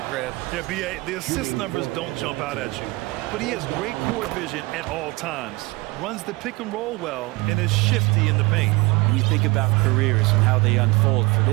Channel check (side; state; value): left; quieter; 23.1 dB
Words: Grant. Yeah, B.A., the assist numbers don't jump out at you. But he has great court vision at all times. Runs the pick and roll well and is shifty in the paint. When you think about careers and how they unfold, for